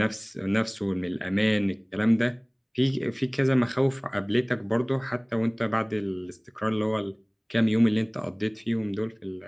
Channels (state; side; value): identical; both; correlation 1.00